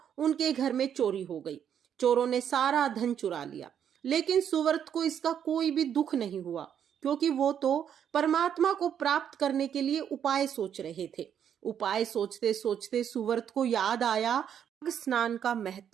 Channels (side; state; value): left; quieter; 8.8 dB